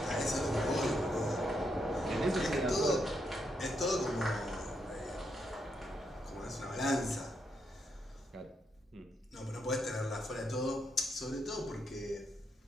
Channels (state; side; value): normal; both; correlation 0.79